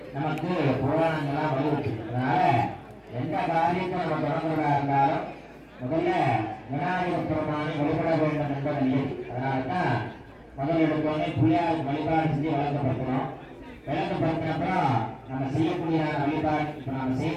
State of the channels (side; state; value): both; identical; correlation 1.00